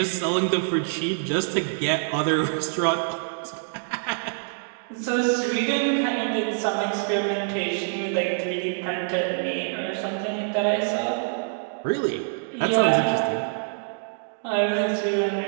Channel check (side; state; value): left; silent; digital silence